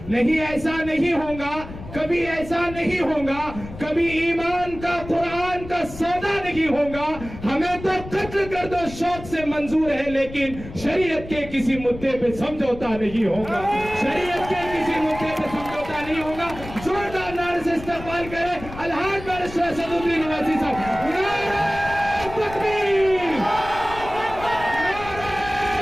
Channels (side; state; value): left; noise; rumble, 13 dB below the sound